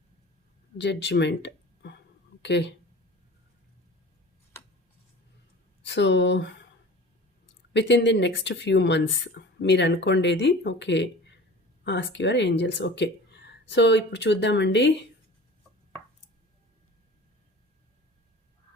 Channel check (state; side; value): normal; both; correlation 0.40